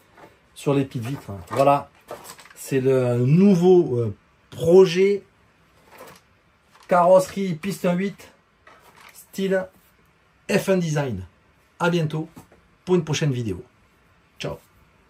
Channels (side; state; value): both; identical; correlation 1.00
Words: sur les petites vitres. Voilà, c'est le nouveau projet carrosserie piste 1/8 style F1 design. À bientôt. pour une prochaine vidéo. Ciao.